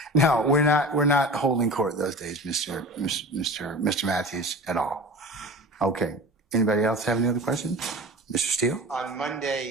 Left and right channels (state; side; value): normal; both; correlation 0.36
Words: No, we're not holding court those days, Mr. Matthews, at all. Okay. Anybody else have any other questions? Mr. Steele? On